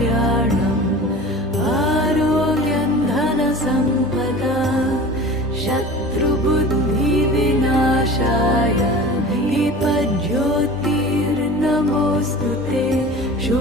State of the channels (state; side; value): normal; both; correlation 0.38